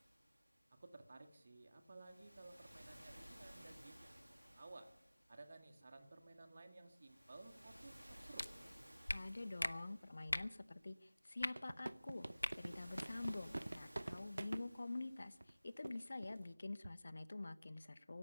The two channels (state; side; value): inverted; both; correlation -0.98